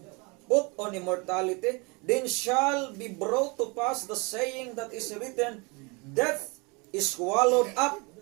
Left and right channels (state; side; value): quieter; left; 29.0 dB